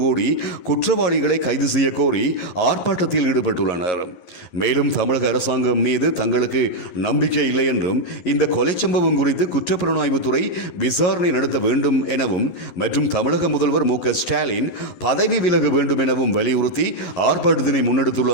கூடி குற்றவாளிகளை கைது செய்ய கோரி ஆர்ப்பாட்டத்தில் ஈடுபட்டுள்ளனர். மேலும் தமிழக அரசாங்கம் மீது தங்களுக்கு நம்பிக்கை இல்லை என்றும் இந்த கொலை சம்பவம் குறித்து குற்றப்புலனாய்வுத்துறை விசாரணை நடத்த வேண்டும் எனவும் மற்றும் தமிழக முதல்வர் மு.க. ஸ்டாலின் பதவி விலக வேண்டும் எனவும் வலியுறுத்தி ஆர்ப்பாட்டத்தினை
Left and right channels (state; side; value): late; right; 11 ms